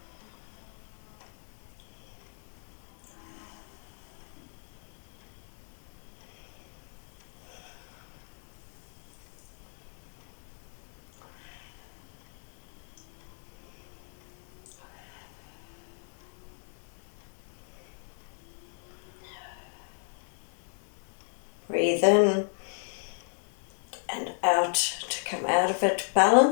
Breathe in and out to come out of it,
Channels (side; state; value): right; silent; 55 dB below the other